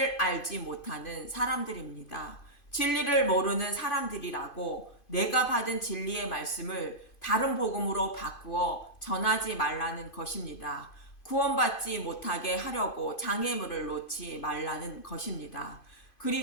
알지 못하는 사람들입니다. 진리를 모르는 사람들이라고 내가 받은 진리의 말씀을 다른 복음으로 바꾸어 전하지 말라는 것입니다. 구원받지 못하게 하려고 장애물을 놓지 말라는 것입니다.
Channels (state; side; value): late; right; 2.5 ms